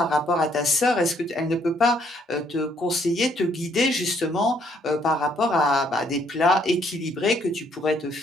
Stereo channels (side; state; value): both; normal; correlation 0.68